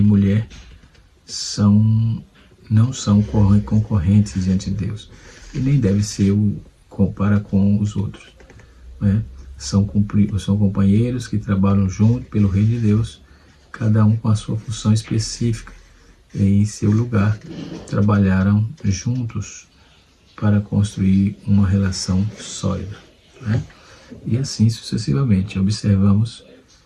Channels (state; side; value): identical; both; correlation 1.00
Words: não são concorrentes diante de Deus, e nem deve ser para com os outros, né? São companheiros que trabalham junto pelo reino de Deus, cada um com a sua função específica em seu lugar. Trabalharam juntos para construir uma relação sólida, né? E assim sucessivamente. Observamos